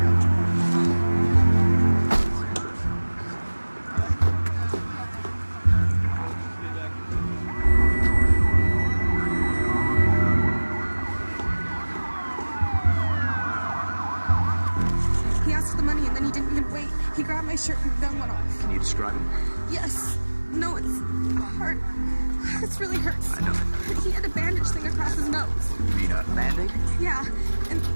He asked for the money and then he didn't even wait. He grabbed my shirt and the gun went off. Can you describe him? Yes. No, it's hard. This really hurts. I know. He had a bandage thing across his nose. You mean a Band-Aid? Yeah, and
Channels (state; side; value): inverted; both; correlation -1.00